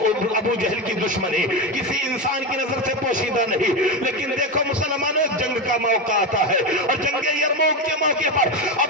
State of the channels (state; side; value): normal; both; correlation 0.15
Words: ابو جہل کی دشمنی کسی انسان کی نظر سے پوشیدہ نہیں, لیکن دیکھو مسلمانوں, جنگ کا موقع آتا ہے اور جنگ یرموک کے موقع پر